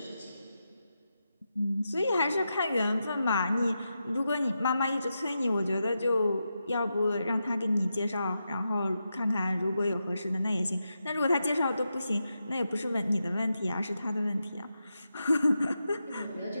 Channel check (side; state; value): both; inverted; correlation -0.88